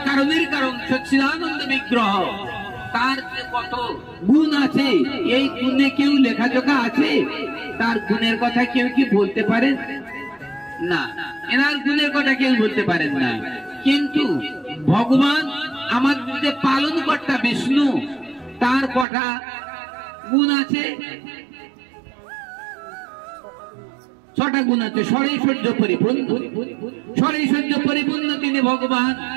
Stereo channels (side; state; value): left; drops out; at 19.1 s